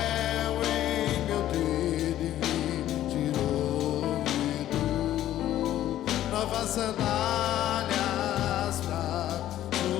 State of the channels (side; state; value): right; quieter; 12.8 dB